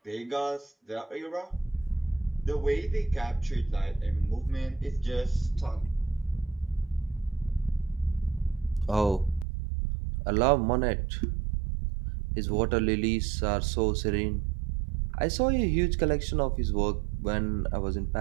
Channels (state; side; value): drops out; left; at 9.5 s